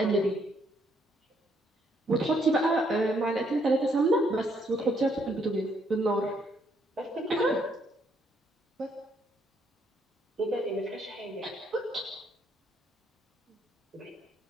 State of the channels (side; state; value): both; normal; correlation 0.71